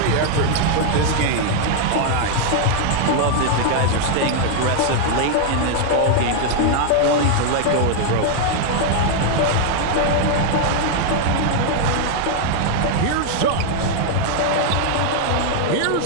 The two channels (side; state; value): both; different; correlation 0.00